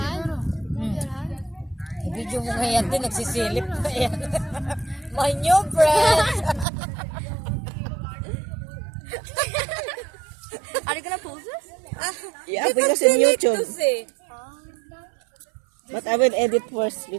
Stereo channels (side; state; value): left; drops out; at 6.7 s